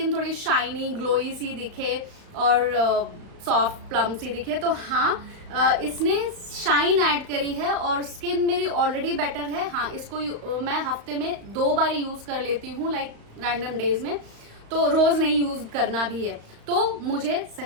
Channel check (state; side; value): late; left; 35 ms